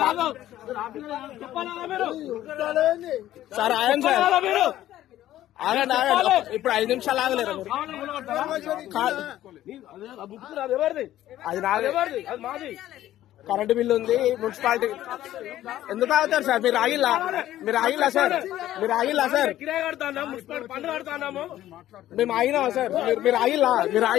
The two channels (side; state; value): right; quieter; 13.4 dB